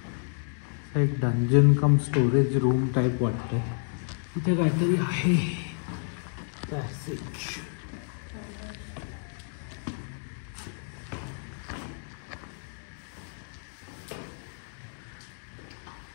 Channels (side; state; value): right; silent; 58 dB below the other